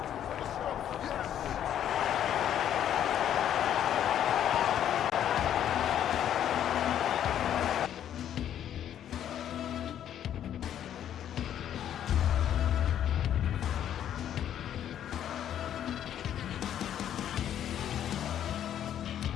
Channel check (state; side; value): quieter; right; 10.3 dB